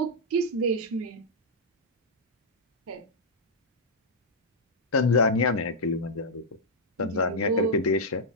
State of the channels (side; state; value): both; normal; correlation -0.06